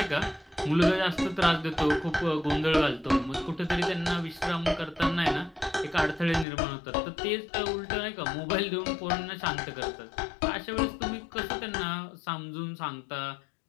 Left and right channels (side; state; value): right; drops out; at 6.5 s